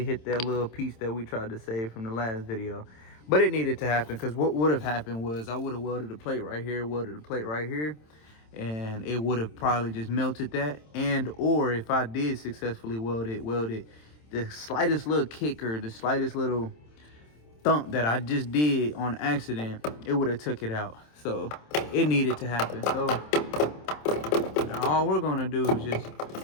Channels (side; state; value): right; late; 27 ms